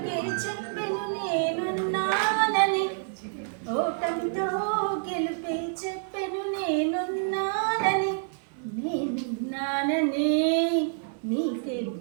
చెప్పెను నేనున్నానని, ఓటమితో గెలుపే చెప్పెను నేనున్నానని, నేనున్నానని నీకేం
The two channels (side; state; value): left; silent; digital silence